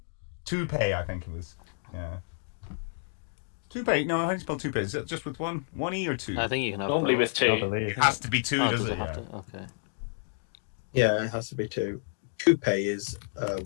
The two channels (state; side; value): silent; right; digital silence